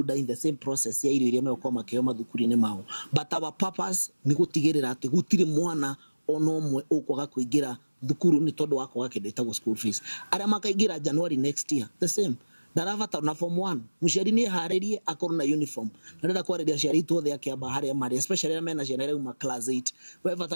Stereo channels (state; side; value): inverted; both; correlation -1.00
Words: in the same process ya irio iria meko makeo mathukuru-ini mao but our purpose ni gutigirira ati gutire mwana ono omwe ukwaga kuingira thukuru ni tondu wako gake ndetagwo school fees aria makaingira January next year the same ndaravata na form 1 muciari ni haririe akorwo na uniform ndenda kwariria ciari tuothe akiamba haria mari especially na mena ciana reuma class 8 we